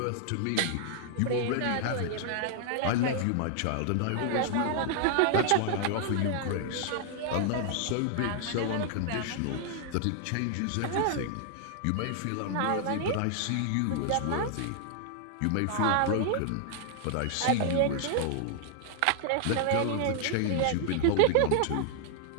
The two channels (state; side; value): different; both; correlation 0.00